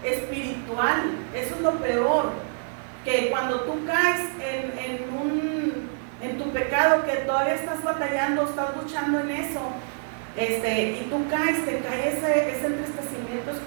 espiritual. Eso es lo peor, que cuando tú caes en tu pecado, que todavía estás batallando, estás luchando en eso, y tú caes, te cae ese entristecimiento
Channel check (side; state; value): left; silent; digital silence